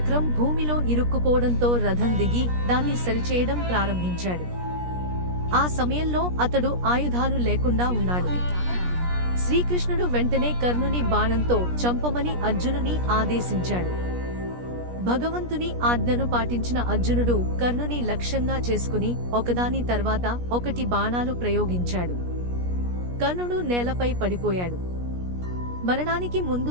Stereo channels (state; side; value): late; left; 17 ms